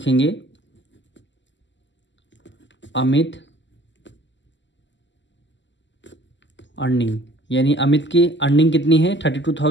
अमित अर्निंग, यानी अमित की अर्निंग कितनी है?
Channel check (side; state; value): right; late; 0.53 ms